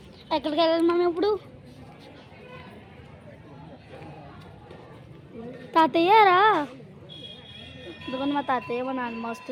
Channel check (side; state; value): both; identical; correlation 1.00